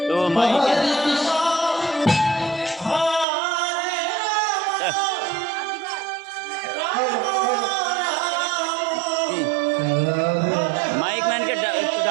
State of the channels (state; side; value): drops out; left; at 3.2 s